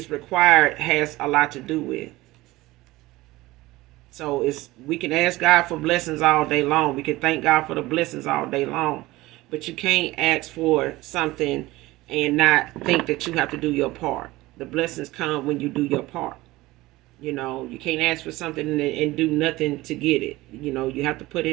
required, has a lot to do with. So we can ask God for blessings all day long. We can thank God for the blessings all day long. But you can't ask for something and not think that you have to do your part. The blessings come when you do your part. You can't ask for something and do nothing to get it. You have to put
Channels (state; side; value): quieter; left; 19.0 dB